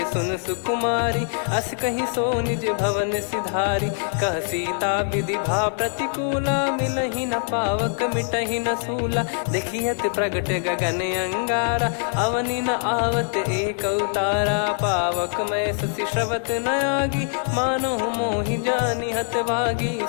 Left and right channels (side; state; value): right; silent; 60 dB below the other